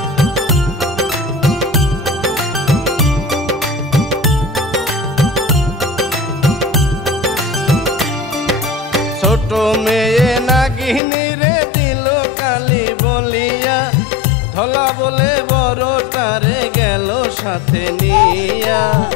ছোট মেয়ে নাগিনী রে দিল কালি বলিয়া, ধলা বলে বড়টারে গেল সাথে নিয়া।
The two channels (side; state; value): right; drops out; at 11.0 s